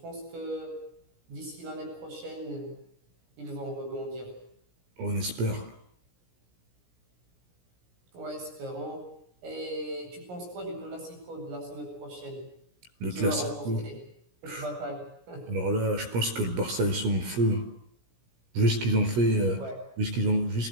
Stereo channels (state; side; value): late; left; 17 ms